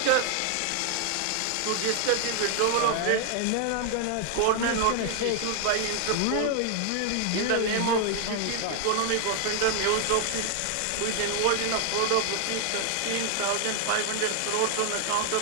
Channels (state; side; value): different; both; correlation 0.00